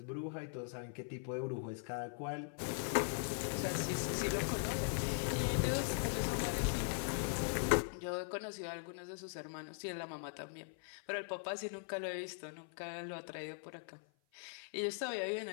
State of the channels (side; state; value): right; silent; 51 dB below the other